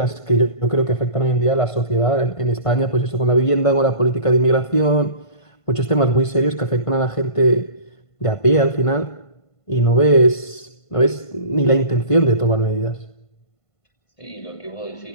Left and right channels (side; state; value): right; late; 1.5 ms